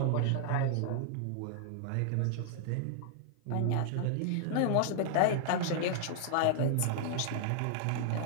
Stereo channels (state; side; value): different; both; correlation 0.00